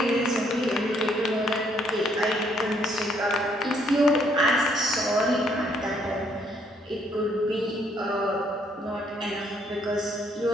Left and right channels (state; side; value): normal; both; correlation 0.68